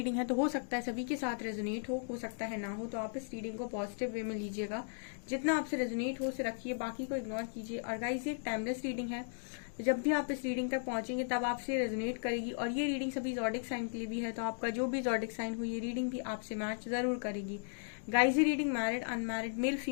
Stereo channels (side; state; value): right; silent; digital silence